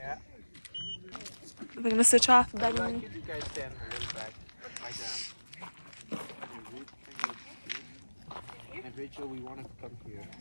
We're gonna switch off. I'd like you to guys stand a little back, like that. And Rachel, we want to come here.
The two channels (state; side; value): inverted; both; correlation -1.00